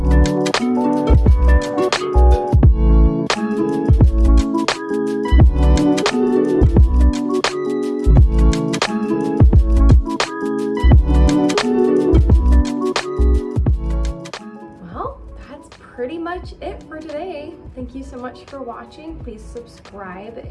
Pretty much it for today. Thank you so much for watching. Please subscribe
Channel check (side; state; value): both; identical; correlation 1.00